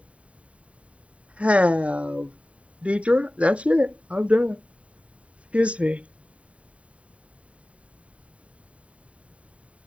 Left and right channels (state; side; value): late; left; 0.065 ms